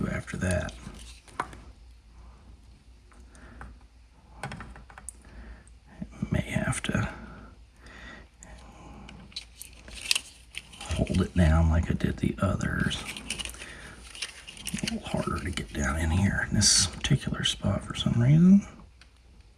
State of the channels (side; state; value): both; identical; correlation 1.00